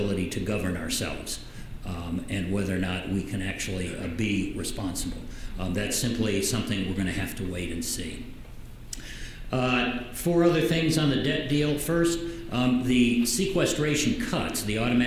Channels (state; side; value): identical; both; correlation 1.00